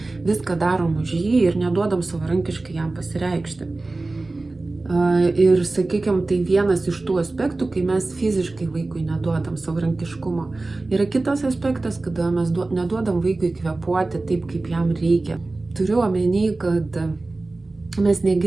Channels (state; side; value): quieter; left; 3.2 dB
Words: viską darom už jį ir neduodam savarankiškai jam pasireikšti. Ir, sakykime, tai vienas iš tų aspektų, kai mes fiziškai vaikui neduodam savarankiškumo. Yra kitas aspektas, kada mes neduodam vaikui kvėpuoti taip, kaip jam reikia. Turiu omeny, kad mes